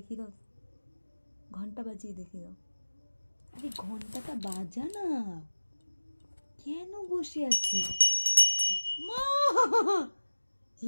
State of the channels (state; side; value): inverted; both; correlation -1.00